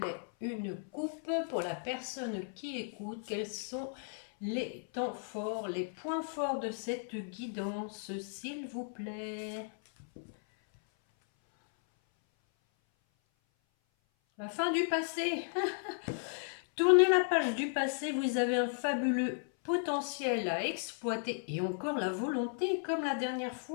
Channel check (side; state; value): right; silent; 54 dB below the other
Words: une coupe pour la personne qui écoute. Quels sont les temps forts, les points forts de cette guidance, s'il vous plaît? La fin du passé. Tournez la page du passé, vous avez un fabuleux potentiel à exploiter et encore la volonté comme la dernière